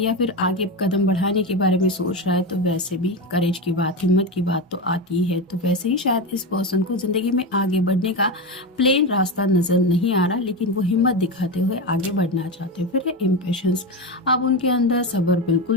फिर आगे कदम बढ़ाने के बारे में सोच रहा है तो वैसे भी करेज की बात, हिम्मत की बात तो आती है। तो वैसे ही शायद इस पर्सन को ज़िंदगी में आगे बढ़ने का प्लेन रास्ता नज़र नहीं आ रहा, लेकिन वो हिम्मत दिखाते हुए आगे बढ़ना चाहते हैं। फिर है इम्पेशंस। अब उनके अंदर सब्र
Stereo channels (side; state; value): both; normal; correlation 0.17